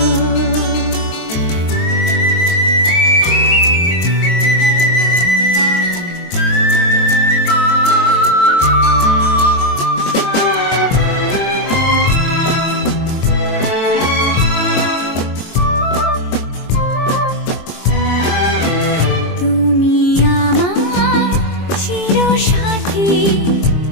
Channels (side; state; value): right; late; 23 ms